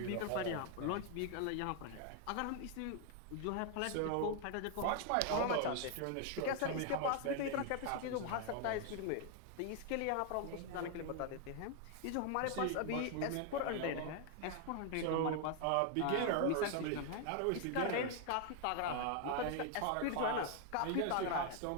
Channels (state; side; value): different; both; correlation 0.00